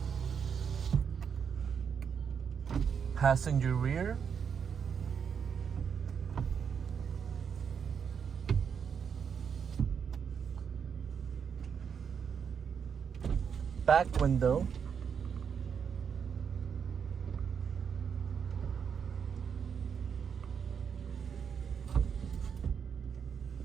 Passenger rear. Back window.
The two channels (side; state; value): left; quieter; 7.0 dB